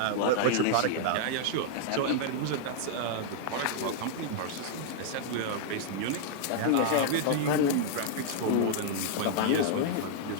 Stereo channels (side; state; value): both; different; correlation -0.01